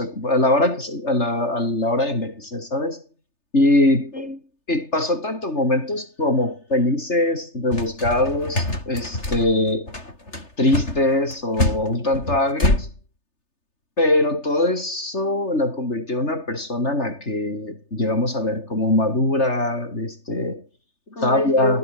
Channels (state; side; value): late; right; 3.3 ms